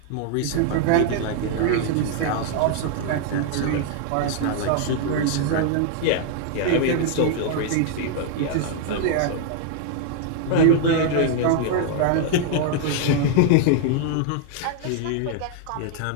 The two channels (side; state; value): both; different; correlation 0.00